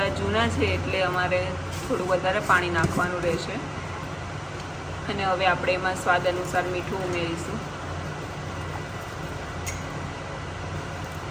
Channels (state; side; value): identical; both; correlation 1.00